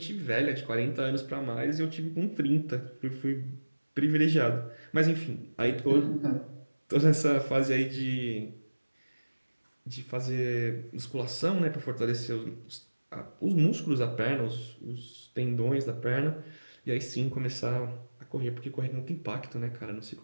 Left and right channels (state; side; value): inverted; both; correlation -1.00